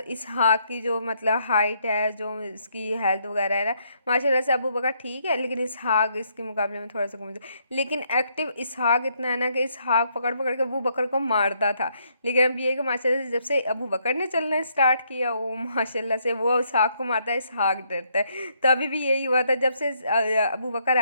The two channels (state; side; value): inverted; both; correlation -0.73